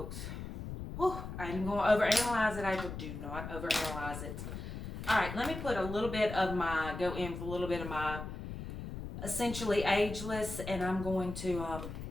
Oh, I ain't going to overanalyze it, April. Do not overanalyze it. All right, let me put a little bit of my, go in with a little bit of my Essentially Ageless, and I'm going to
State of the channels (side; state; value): left; noise; rumble, 8 dB below the sound